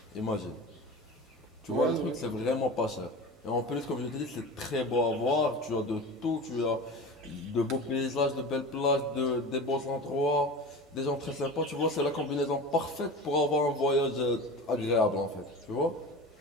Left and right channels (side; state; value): both; normal; correlation 0.32